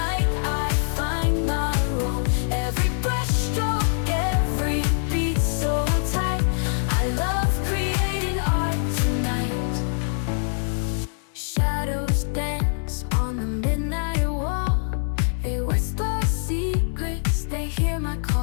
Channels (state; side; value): silent; right; digital silence